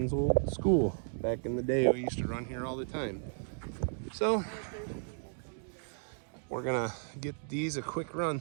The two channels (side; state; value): left; silent; digital silence